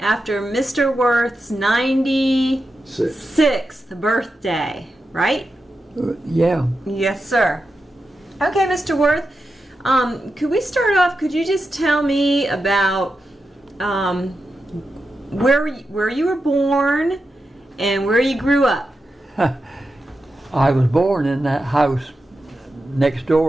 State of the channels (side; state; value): both; normal; correlation 0.89